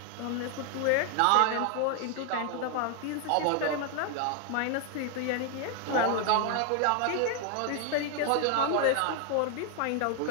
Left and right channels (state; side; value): different; both; correlation 0.00